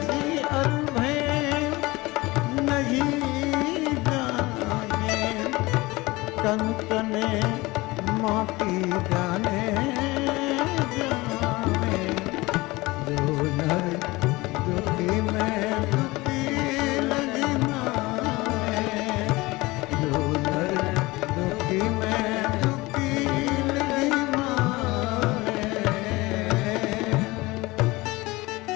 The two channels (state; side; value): quieter; right; 21.5 dB